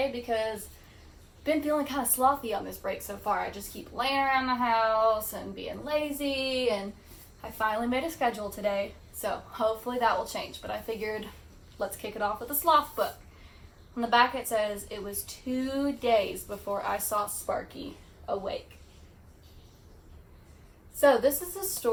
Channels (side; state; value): both; identical; correlation 1.00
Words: because I've been feeling kind of slothy on this break so far. I just keep laying around the house and being lazy, and I finally made a schedule today, so hopefully that will change. But I figured let's kick it off with a sloth book. On the back it says, it was 2 days before I saw Sparky awake. So this is a